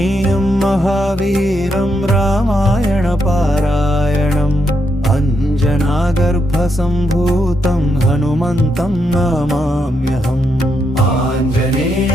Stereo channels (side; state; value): both; normal; correlation 0.80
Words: महावीरं रामायणपारायणम् अञ्जनागर्भसम्भूतं हनुमन्तं नमाम्यहम्